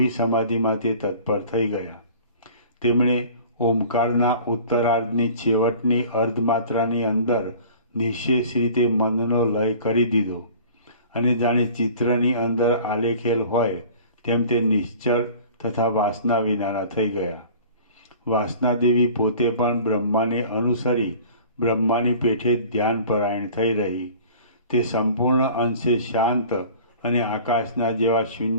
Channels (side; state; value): both; inverted; correlation -0.45